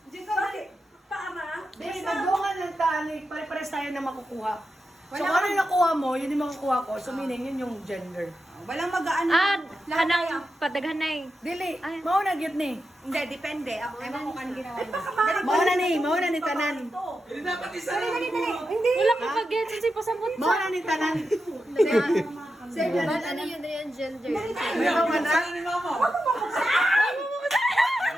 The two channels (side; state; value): both; normal; correlation 0.89